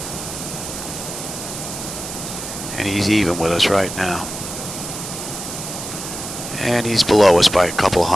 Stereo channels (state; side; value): noise; right; hiss, 8 dB below the sound